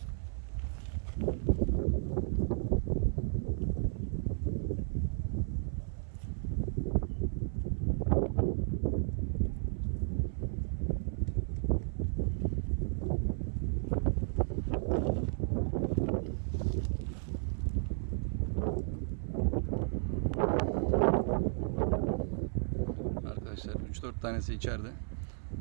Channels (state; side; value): silent; left; 55 dB below the other